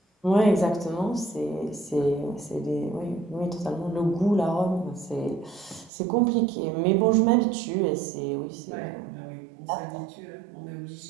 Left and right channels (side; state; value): left; drops out; at 5.9 s